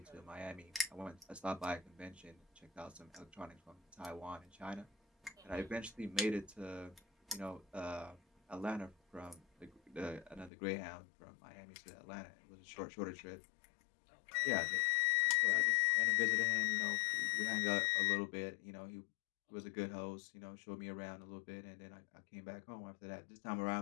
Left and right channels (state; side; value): drops out; right; at 10.5 s